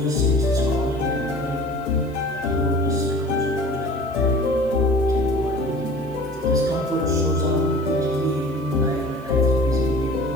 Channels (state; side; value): noise; right; hiss, 29 dB below the sound